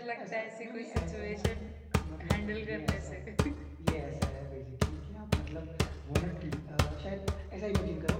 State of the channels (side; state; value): both; identical; correlation 1.00